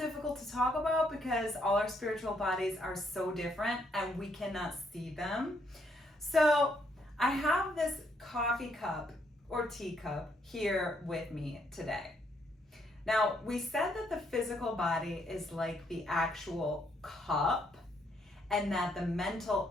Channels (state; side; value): normal; both; correlation 0.73